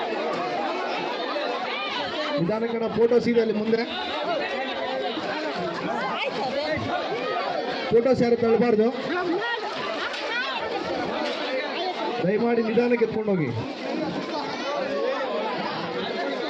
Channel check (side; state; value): both; identical; correlation 1.00